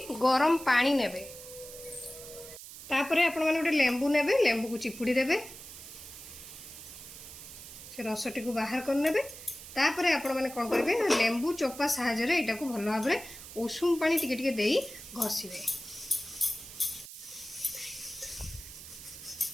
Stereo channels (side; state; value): right; noise; hiss, 14 dB below the sound